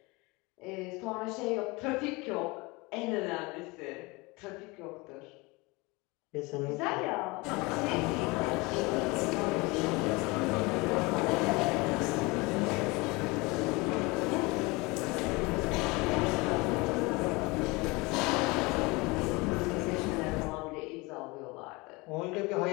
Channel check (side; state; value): right; quieter; 25.0 dB